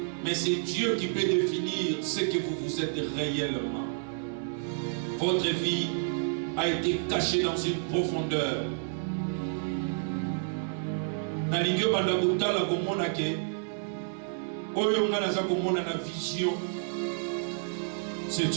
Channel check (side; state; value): left; silent; digital silence